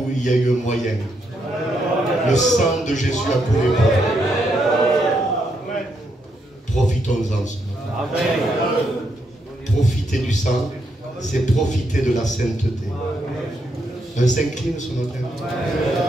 il y a eu un moyen. Le sang de Jésus a coulé pour nous. Profitons-en ce matin. Profiter du sang, c'est profiter de la sainteté. On s'incline ce matin.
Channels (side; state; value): both; normal; correlation 0.78